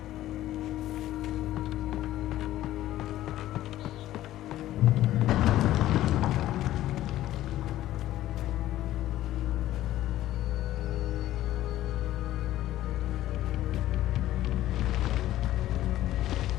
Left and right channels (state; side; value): quieter; right; 14.1 dB